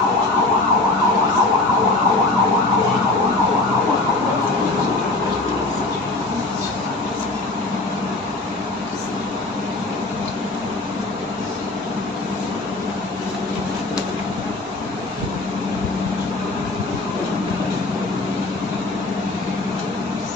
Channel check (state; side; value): quieter; right; 3.0 dB